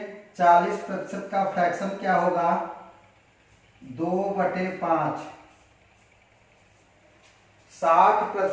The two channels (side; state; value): both; identical; correlation 1.00